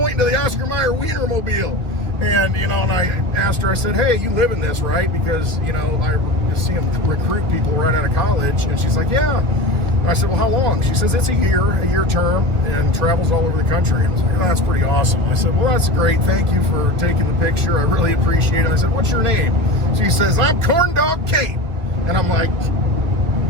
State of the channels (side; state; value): left; late; 1.8 ms